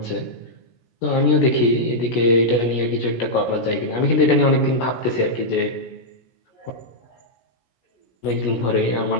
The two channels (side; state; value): right; late; 17 ms